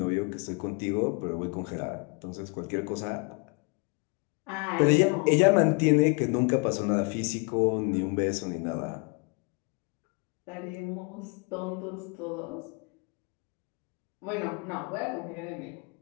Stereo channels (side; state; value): right; quieter; 34.2 dB